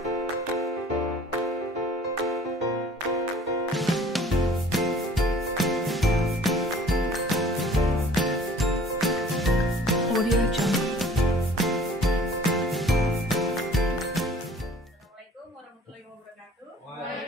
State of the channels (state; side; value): normal; both; correlation 0.51